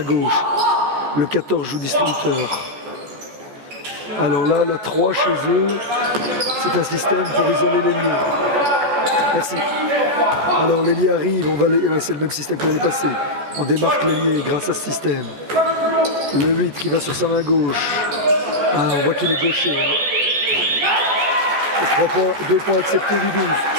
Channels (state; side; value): late; left; 14 ms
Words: Le 14 joue distributeur. Alors là, la 3 chez eux, c'est un système pour isoler l'ailier. Merci. Alors l'ailier arrive, c'est le même système que l'année passée. On démarque l'ailier grâce à ce système. Le 8 qui va sur sa main gauche. Ah, on voit qu'il est gaucher. 3 points, 2 points acceptés du 12.